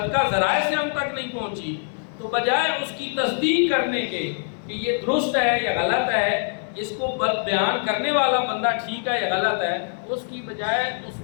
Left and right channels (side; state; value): right; silent; 60 dB below the other